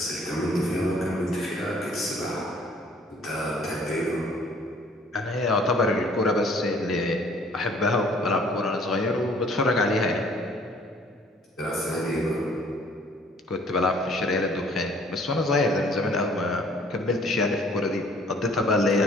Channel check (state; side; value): normal; both; correlation 0.57